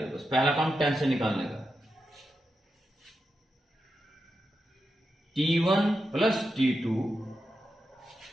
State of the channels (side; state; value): both; normal; correlation 0.87